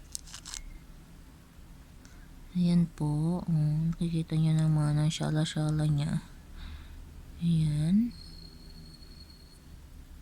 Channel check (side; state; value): both; identical; correlation 1.00